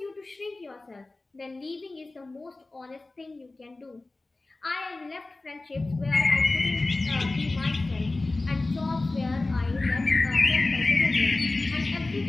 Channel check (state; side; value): quieter; right; 3.1 dB